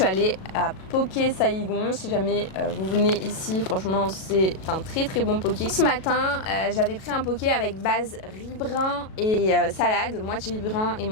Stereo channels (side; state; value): right; late; 37 ms